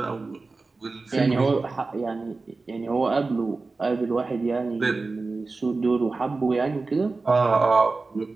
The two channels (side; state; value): left; quieter; 3.8 dB